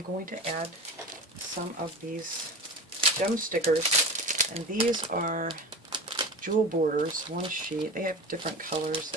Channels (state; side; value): normal; both; correlation 0.31